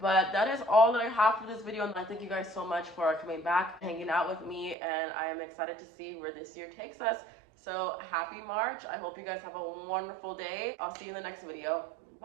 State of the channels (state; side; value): drops out; left; at 4.8 s